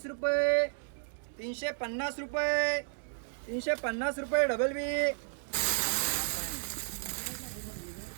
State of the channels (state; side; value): silent; left; digital silence